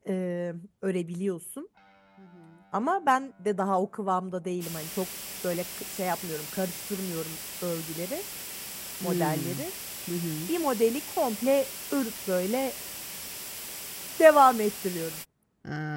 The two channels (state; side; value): identical; both; correlation 1.00